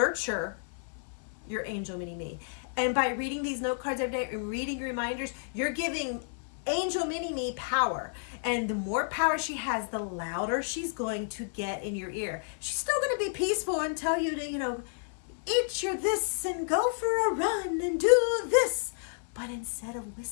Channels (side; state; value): right; silent; digital silence